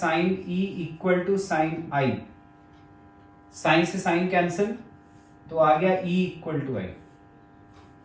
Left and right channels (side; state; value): both; identical; correlation 1.00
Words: E equal to sine I. Sine से साइन कैंसिल, तो आ गया ई इक्वल टू आई।